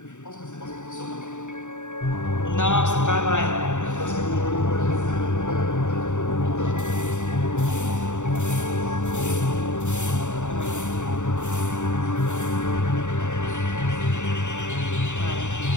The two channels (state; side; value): late; right; 0.85 ms